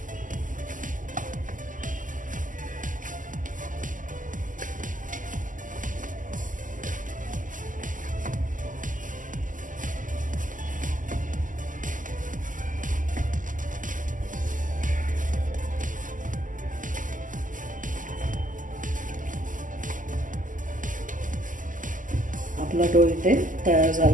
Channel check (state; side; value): late; left; 0.38 ms